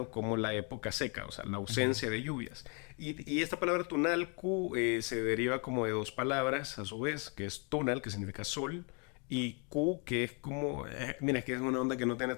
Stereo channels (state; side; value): quieter; right; 36.0 dB